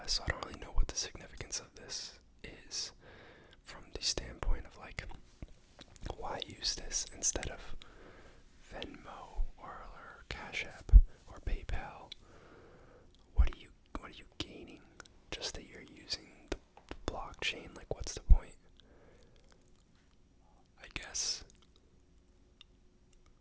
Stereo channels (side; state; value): both; identical; correlation 1.00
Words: so I don't really know what the significance of this is from the standpoint of like, why use this instead of Venmo or Cash App or PayPal? What are you gaining? Just that you're using the blockchain? Like, what's the point? I guess